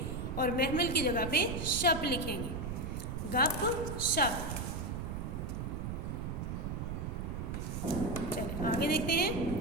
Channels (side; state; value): right; noise; rumble, 4 dB below the sound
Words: اور محمل کی جگہ پہ شپ لکھیں گے۔ گپ شپ۔ چلیں آگے دیکھتے ہیں،